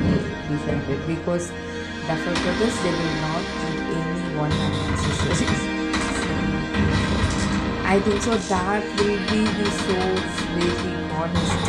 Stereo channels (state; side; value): identical; both; correlation 1.00